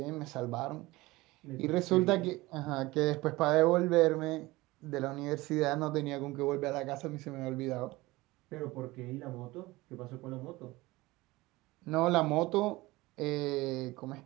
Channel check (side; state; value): left; quieter; 20.4 dB